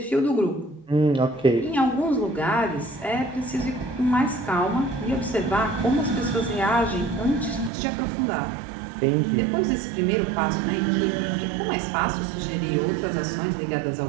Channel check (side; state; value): left; drops out; at 7.7 s